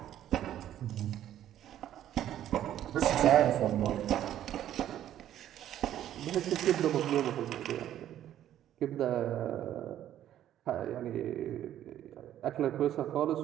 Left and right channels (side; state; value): left; quieter; 11.6 dB